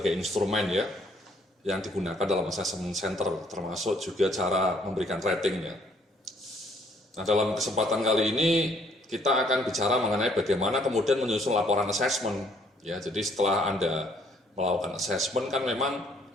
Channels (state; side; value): normal; both; correlation 0.64